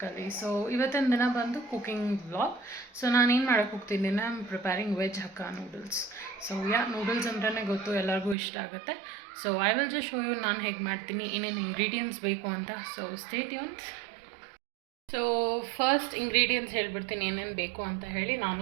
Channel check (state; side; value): drops out; left; at 8.3 s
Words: ಸೊ ಇವತ್ತಿನ ದಿನ ಬಂದು ಕುಕಿಂಗ್ ವ್ಲಾಗ್. ಸೊ ನಾನೇನು ಮಾಡೋಕ್ಕೆ ಹೋಗ್ತಿದ್ದೀನಿ, I am preparing veg hakka noodles. So noodles ಅಂದ್ರೇ ಗೊತ್ತು, ಎಲ್ಲರಿಗೂ ಇಷ್ಟ ಆಗುತ್ತೆ. So I will just show you ನಾನು ಹೇಗೆ ಮಾಡ್ತೀನಿ, ಏನೇನು ಇಂಗ್ರೀಡಿಯೆಂಟ್ಸ್ ಬೇಕು ಅಂತ. So stay tuned. So first ingredients ಹೇಳ್ಬಿಡ್ತೀನಿ ಏನೇನು ಬೇಕು ಅಂತ ಹೇಳಿ, ನಾನು